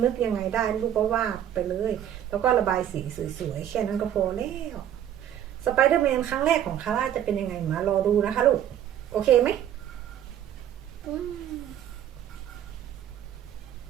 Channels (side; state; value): left; quieter; 10.5 dB